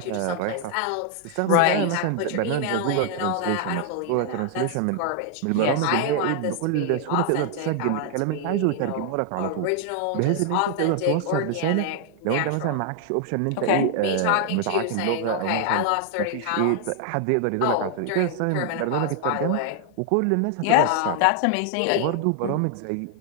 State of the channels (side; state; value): both; different; correlation 0.00